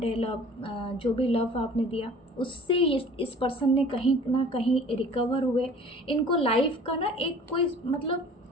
लव, जो भी लव आपने दिया, उससे इस पर्सन ने कहीं ना कहीं रिकवर हुए। इनको लाइफ का ना एक कोई मतलब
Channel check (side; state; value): both; normal; correlation 0.47